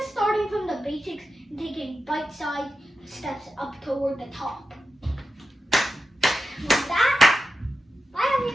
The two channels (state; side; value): normal; both; correlation 0.90